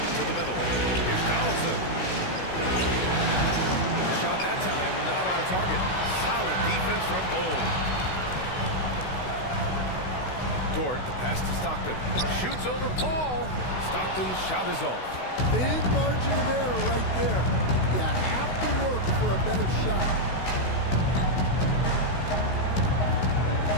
To the middle. Here's Donaldson. Shot that time, not on target. Solid defense from Bull. Dort, the pass to Stockton. Shoots over Paul. Stockton's shot is off. Big margin of error right there. You have to work for a better shot.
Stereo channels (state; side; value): late; right; 16 ms